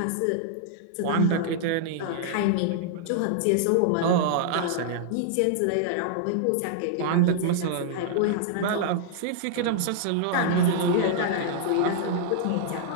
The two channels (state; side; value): different; both; correlation -0.01